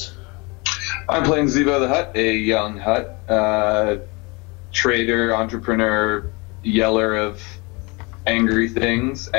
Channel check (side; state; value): right; quieter; 27.7 dB